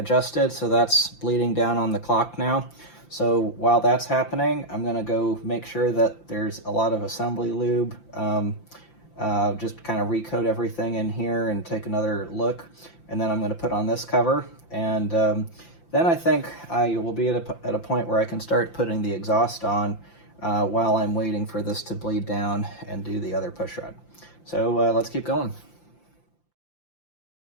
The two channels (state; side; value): late; right; 5.8 ms